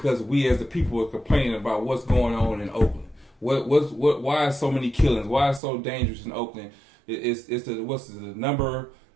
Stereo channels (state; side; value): drops out; left; at 5.6 s